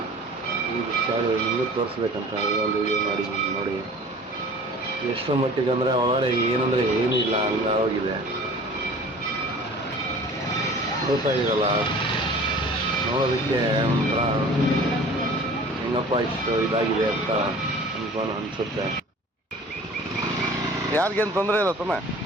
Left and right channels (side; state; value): both; normal; correlation 0.45